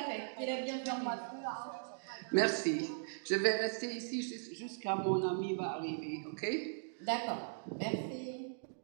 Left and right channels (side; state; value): left; silent; digital silence